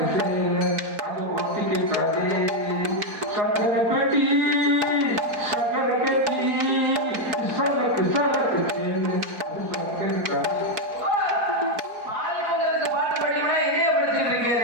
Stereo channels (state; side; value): late; left; 4.5 ms